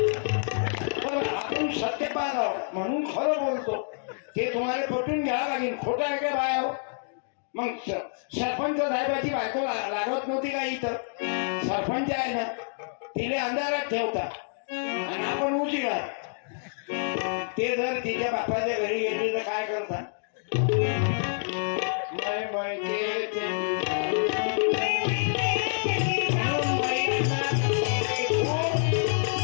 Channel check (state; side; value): silent; right; digital silence